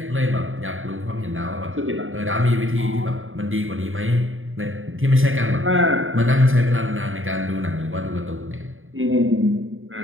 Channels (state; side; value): late; left; 0.59 ms